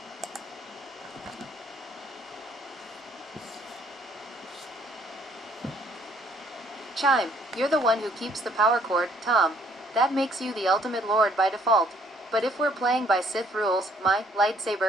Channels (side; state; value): both; normal; correlation 0.64